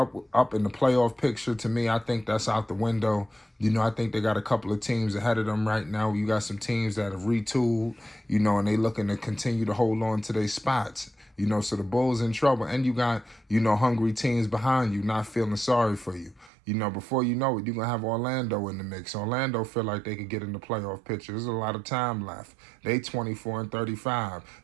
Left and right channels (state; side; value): drops out; left; at 16.5 s